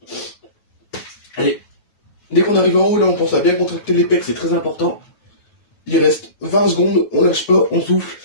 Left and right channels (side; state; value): right; late; 9.3 ms